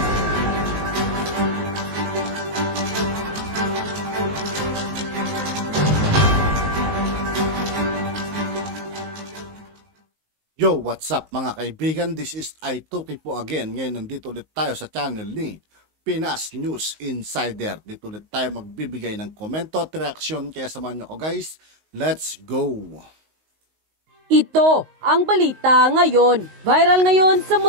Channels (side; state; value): left; late; 19 ms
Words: Yo, what's up mga kaibigan? This is Aituki po again. Ngayon nandito ulit tayo sa channel ni Pinas News Insider. Dito ulit tayo magbibigay ng komento at reaksyon. Kaya samahan nyo ko guys. Let's go! Ito ang balita ngayon. Viral ngayon sa